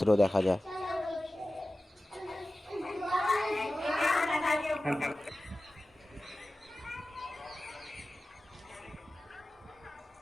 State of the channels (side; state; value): both; normal; correlation 0.96